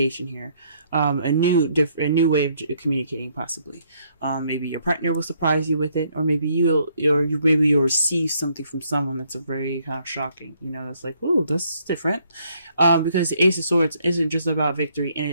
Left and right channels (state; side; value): inverted; both; correlation -0.69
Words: here. A new way of communicating, possibly. Maybe your partner will surprise you with it, or maybe you'll receive something from someone that's a very kind of shocking. That's like, ooh, that's different. Because the Ace of Swords isn't just about victory,